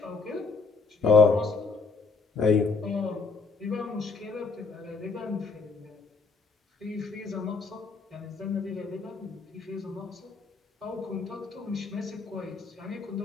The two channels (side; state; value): right; quieter; 4.4 dB